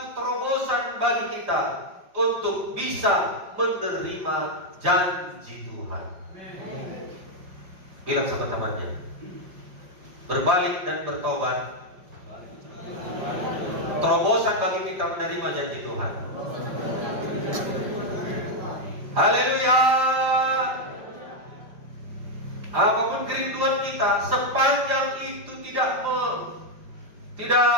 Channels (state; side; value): late; left; 5.0 ms